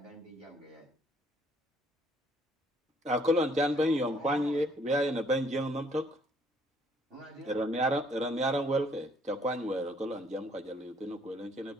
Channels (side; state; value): both; normal; correlation 0.65